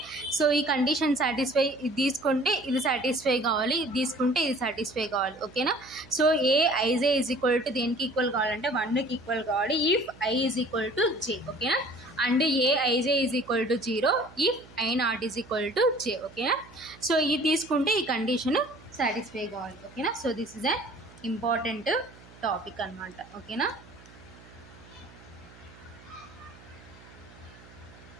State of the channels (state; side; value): noise; right; hum, 22 dB below the sound